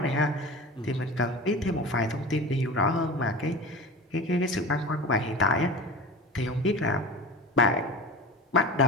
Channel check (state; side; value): normal; both; correlation 0.32